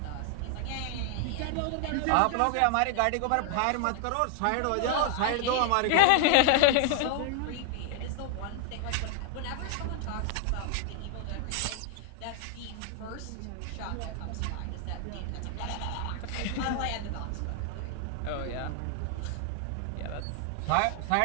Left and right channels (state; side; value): different; both; correlation 0.00